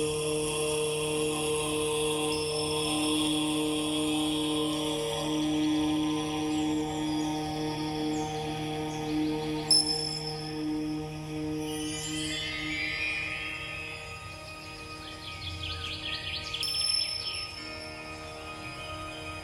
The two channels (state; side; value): identical; both; correlation 1.00